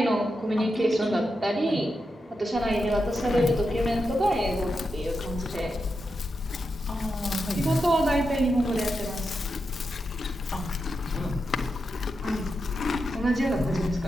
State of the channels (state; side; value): normal; both; correlation 0.87